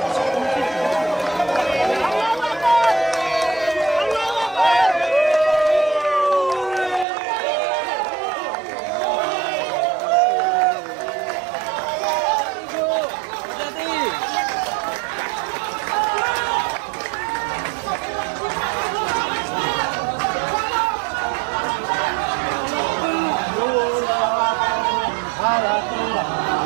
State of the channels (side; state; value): left; drops out; at 7.1 s